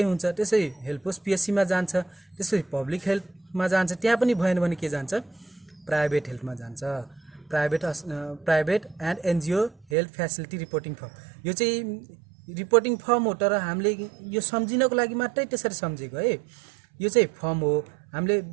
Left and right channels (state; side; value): drops out; left; at 9.9 s